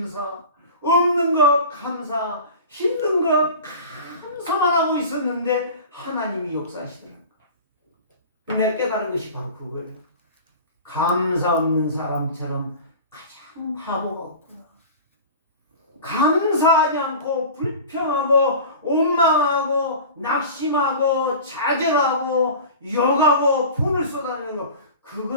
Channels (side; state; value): both; inverted; correlation -0.36